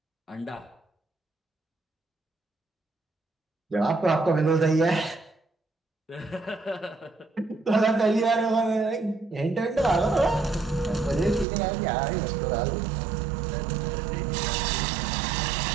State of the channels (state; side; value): drops out; left; at 11.5 s